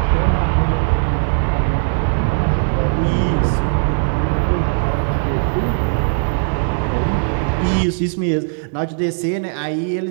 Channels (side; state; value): left; silent; 66 dB below the other